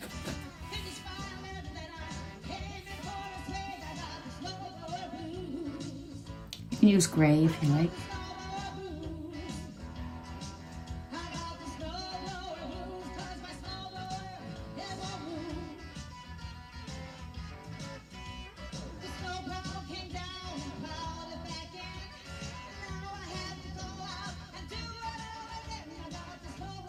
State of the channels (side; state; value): both; identical; correlation 1.00